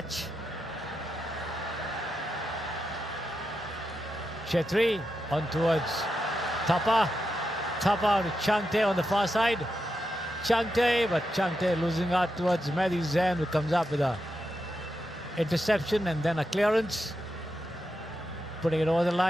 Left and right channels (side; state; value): both; normal; correlation 0.87